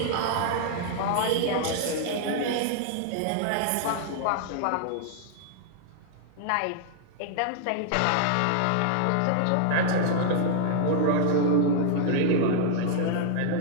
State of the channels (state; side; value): different; both; correlation -0.01